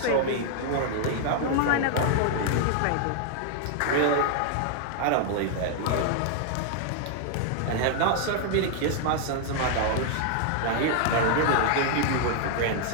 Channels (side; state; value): both; different; correlation 0.00